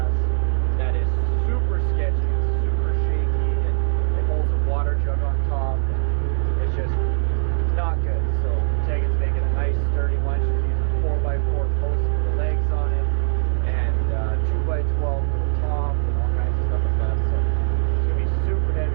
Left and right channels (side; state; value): left; silent; digital silence